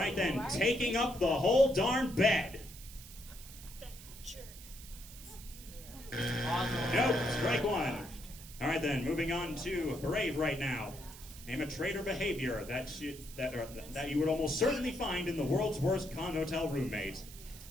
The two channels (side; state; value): right; noise; hiss, 16 dB below the sound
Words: then, taking up the whole darn bed. Nope, strike 1. All right then, moving on to Brave right now. Name a trait or behavior that you would almost certainly find in the world's worst con hotel roommate.